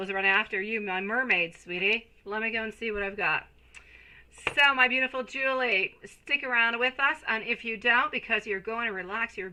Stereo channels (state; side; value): identical; both; correlation 1.00